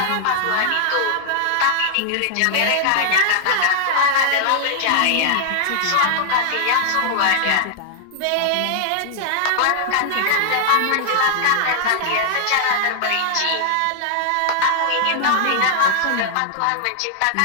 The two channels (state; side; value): different; both; correlation -0.01